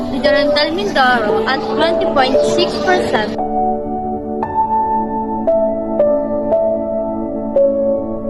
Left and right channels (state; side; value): identical; both; correlation 1.00